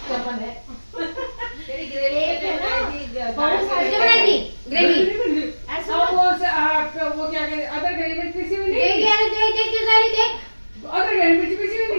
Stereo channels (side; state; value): both; inverted; correlation -1.00